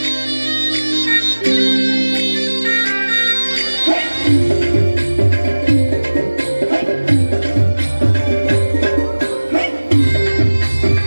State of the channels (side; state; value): both; inverted; correlation -1.00